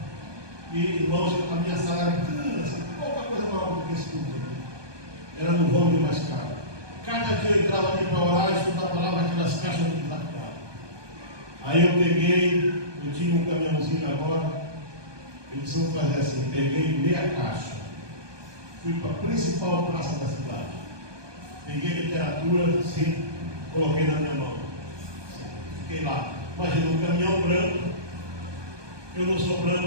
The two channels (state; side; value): late; left; 1.2 ms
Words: E, irmãos, a minha sala era pequena, assim, pouca coisa maior do que esse culto aqui. Era no vão de mais caro. Cada dia eu entrava ali para orar e estudar a palavra, aquelas caixas de desafiado. Aí eu peguei, eu tinha um caminhãozinho agora. Eles vão fazer assim, peguei meia caixa, fui para a principal praça da cidade, peguei literatura, assim, coloquei na minha mão, assim, fiquei lá. Imagina um caminhão branco, eu não sou